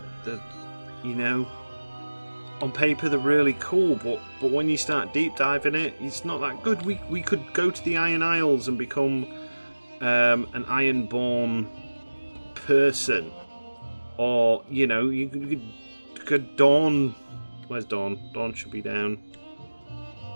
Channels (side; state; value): both; inverted; correlation -1.00